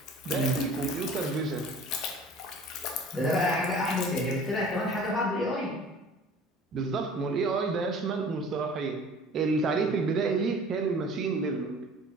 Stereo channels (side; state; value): both; normal; correlation 0.46